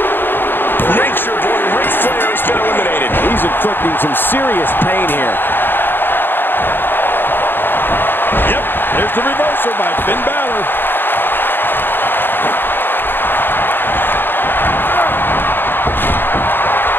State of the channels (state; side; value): late; right; 0.097 ms